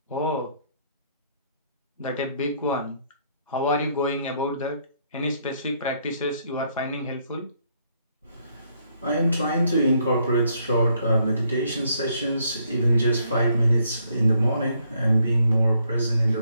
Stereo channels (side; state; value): both; inverted; correlation -0.71